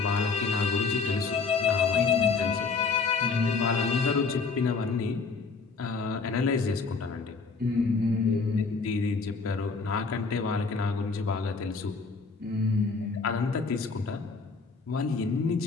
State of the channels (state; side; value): quieter; right; 4.6 dB